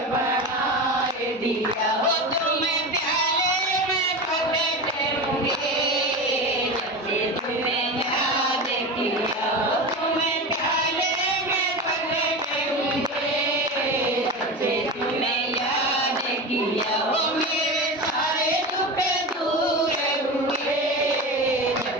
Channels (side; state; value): both; normal; correlation 0.25